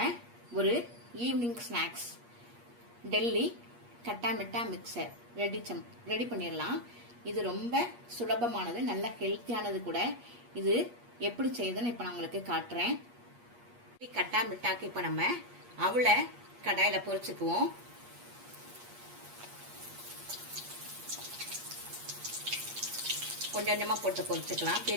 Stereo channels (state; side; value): late; left; 8.4 ms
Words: ஒரு ஈவினிங் ஸ்நாக்ஸ் டெல்லி கட்டா மிட்டா மிக்சர் ரெடி பண்ணிடலாம். இது ரொம்ப சுலபமானது, நல்ல ஹெல்த்தியானது கூட. இது எப்படி செய்யுதுன்னு இப்போ நான் உங்களுக்கு காட்டுறேன். கட்டா மிட்டாக்கு இப்போ நம்ம அவளை கடாயில் பொரிச்சுக்குவோம். கொஞ்சம் கொஞ்சமாக போட்டு பொரிச்சுக்கலாம்.